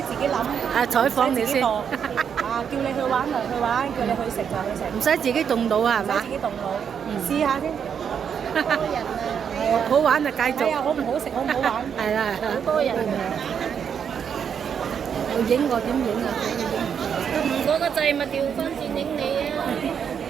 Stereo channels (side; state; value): left; quieter; 7.6 dB